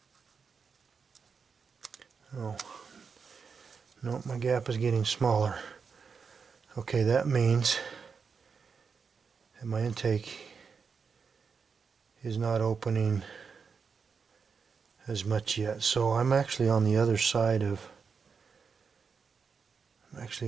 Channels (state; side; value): quieter; left; 5.7 dB